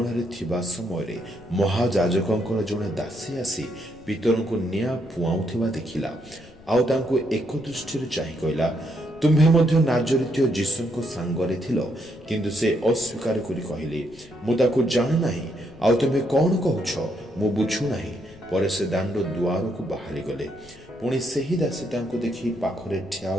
ଥିବା ସମୟରେ ମହାଯାଜକଙ୍କର ଜଣେ ଦାସୀ ଆସି ପିତରଙ୍କୁ ନିଆଁ ପୁଆଉଥିବା ଦେଖିଲା। ଆଉ ତାଙ୍କୁ ଏକ ଦୃଷ୍ଟିରେ ଚାହିଁ କହିଲା, ତୁମ୍ଭେ ମଧ୍ୟ ନାଜରିତୀୟ ଯୀଶୁଙ୍କ ସାଙ୍ଗରେ ଥିଲ। କିନ୍ତୁ ସେ ଅସ୍ୱୀକାର କରି କହିଲେ, ମୁଁ ତାକୁ ଜାଣେ ନାହିଁ। ଆଉ ତୁମ୍ଭେ କ'ଣ କହୁଛ? ମୁଁ ବୁଝୁନାହିଁ। ପରେ ସେ ଦାଣ୍ଡ ଦୁଆରକୁ ବାହାରିଗଲେ। ପୁଣି ସେହି ଦାସୀ ତାଙ୍କୁ ଦେଖି ପାଖରେ ଠିଆ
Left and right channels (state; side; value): noise; left; rumble, 23 dB below the sound